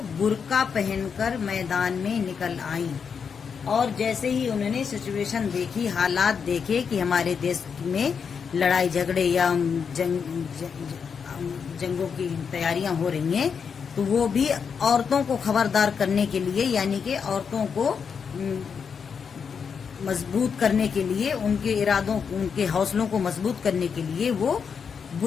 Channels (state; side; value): quieter; right; 6.4 dB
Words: برقع پہن کر میدان میں نکل آئیں، اور جیسے ہی انہوں نے سچویشن دیکھی، حالات دیکھے کہ ہمارے دیش میں لڑائی جھگڑے یا جنگوں کی تیاریاں ہو رہی ہیں، تو وہ بھی عورتوں کو خبردار کرنے کے لیے، یعنی کہ عورتوں کو مضبوط کرنے کے لیے، ان کے ارادوں، ان کے حوصلوں کو مضبوط کرنے کے لیے وہ